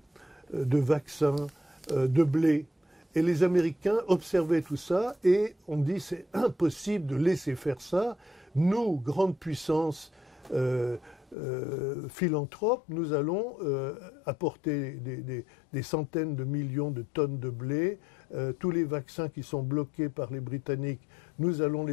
vaccins, de blé. Et les Américains observaient tout ça et on dit c'est impossible de laisser faire ça. Nous, grande puissance philanthrope, nous allons apporter des centaines de millions de tonnes de blé. Tous les vaccins qui sont bloqués par les Britanniques, nous allons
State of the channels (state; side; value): drops out; right; at 11.4 s